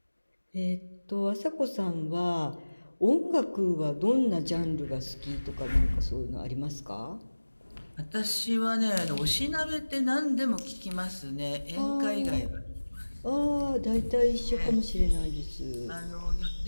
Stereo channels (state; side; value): inverted; both; correlation -1.00